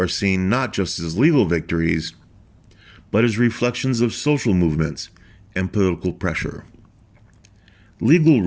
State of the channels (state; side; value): identical; both; correlation 1.00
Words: seen not just as legal victories, but as reflections of social movements and political pressure. Legal